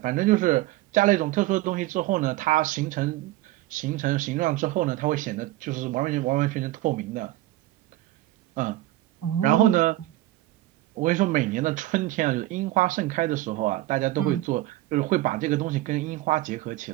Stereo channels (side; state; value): left; quieter; 16.4 dB